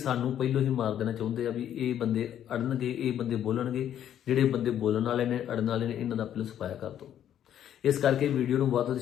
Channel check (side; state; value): right; quieter; 10.4 dB